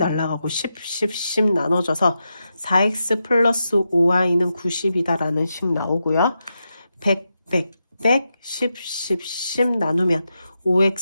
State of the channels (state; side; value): inverted; both; correlation -0.87